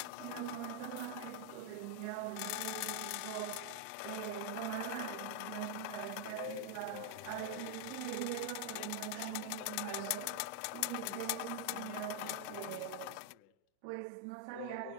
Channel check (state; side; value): different; both; correlation 0.00